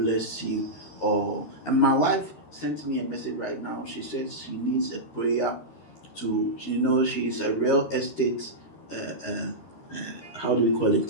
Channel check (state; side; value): late; right; 13 ms